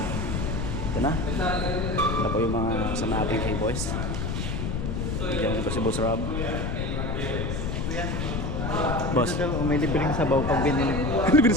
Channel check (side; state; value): left; noise; rumble, 1 dB below the sound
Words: Ito na. Ito po yung mga kasama natin kay boys. Diyan ko si Boss Rob. Boss, may libreng sabaw pag binili mo. libre